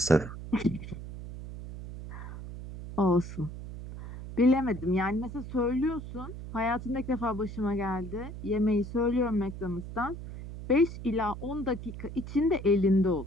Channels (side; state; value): right; noise; hum, 10 dB below the sound